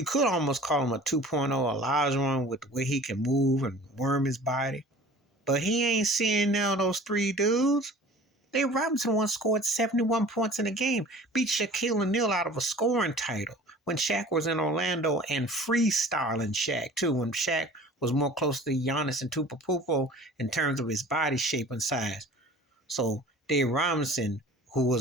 could almost call him a 2.0 Olajuwon with the way he can move and worm his body. But he ain't seeing now those three dudes. Dave Robinson once scored 71 points in a game, beat Shaquille O'Neal out of a scoring title when Shaq was in Orlando, and freestyling Shaq too, when Shaq was more close to Giannis and Tupapupo in terms of his body shape and size. So Dave Robinson, who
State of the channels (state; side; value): normal; both; correlation 0.44